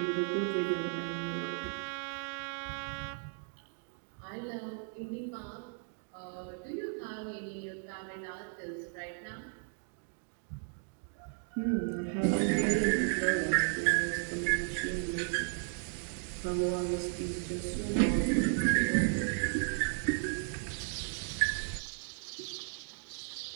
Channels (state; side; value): silent; left; 54 dB below the other